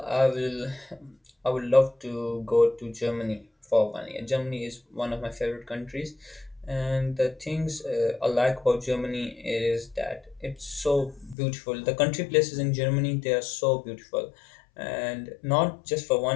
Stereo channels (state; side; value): drops out; right; at 11.4 s